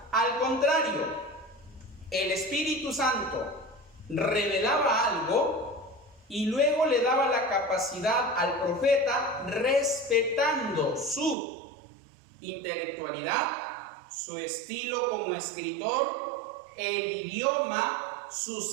Al contrario, el Espíritu Santo revelaba algo y luego le daba la capacidad al profeta, respetando su intelectualidad, su estilo como escritor, el idioma,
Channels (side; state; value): left; drops out; at 11.4 s